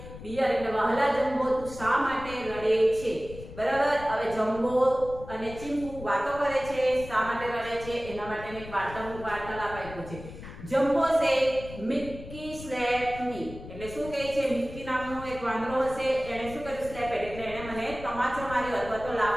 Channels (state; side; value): noise; left; rumble, 13 dB below the sound